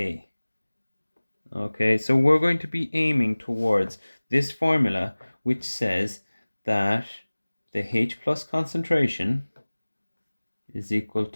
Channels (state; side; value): inverted; both; correlation -1.00